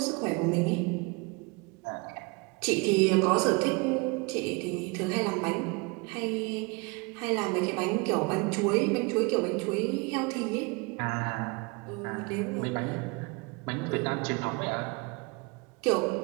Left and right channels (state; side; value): quieter; left; 28.4 dB